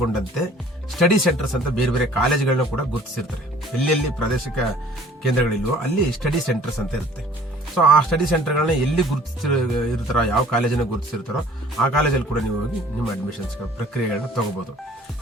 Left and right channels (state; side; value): normal; both; correlation 0.52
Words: ಸ್ಟಡಿ ಸೆಂಟರ್ಸ್ ಅಂತ ಬೇರೆ ಬೇರೆ ಕಾಲೇಜುಗಳನ್ನ ಕೂಡ ಗುರುತಿಸಿರ್ತಾರೆ. ಎಲ್ಲೆಲ್ಲಿ ಪ್ರಾದೇಶಿಕ ಕೇಂದ್ರಗಳಿಲ್ವೋ ಅಲ್ಲಿ ಸ್ಟಡಿ ಸೆಂಟರ್ಸ್ ಅಂತ ಇರುತ್ತೆ. ಸೊ ಆ ಸ್ಟಡಿ ಸೆಂಟರ್ಗಳನ್ನ ಎಲ್ಲಿ ಗುರುತಿಸಿರ್ತಾರೋ, ಯಾವ ಕಾಲೇಜನ್ನ ಗುರುತಿಸಿರ್ತಾರೋ ಆ ಕಾಲೇಜಲ್ಲಿ ಕೂಡ ನೀವು ಹೋಗಿ ನಿಮ್ಮ ಅಡ್ಮಿಷನ್ಸ್ ಪ್ರಕ್ರಿಯೆಗಳನ್ನ ತಗೋಬಹುದು.